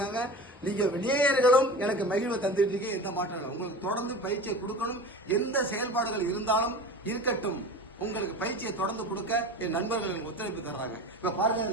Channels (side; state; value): both; normal; correlation 0.33